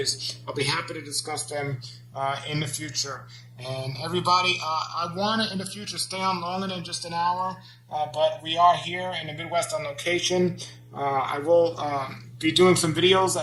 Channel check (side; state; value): both; identical; correlation 1.00